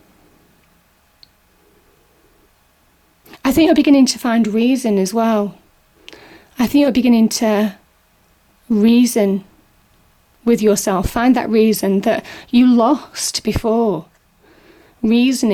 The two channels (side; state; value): both; identical; correlation 1.00